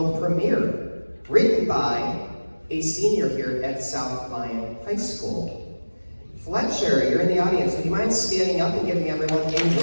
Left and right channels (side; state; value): both; inverted; correlation -1.00